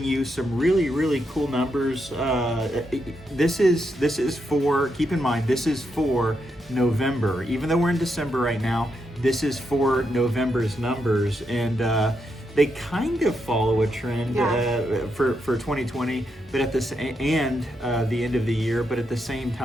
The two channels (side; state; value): both; normal; correlation 0.82